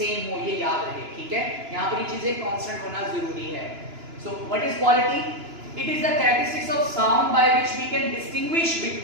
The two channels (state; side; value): late; left; 2.9 ms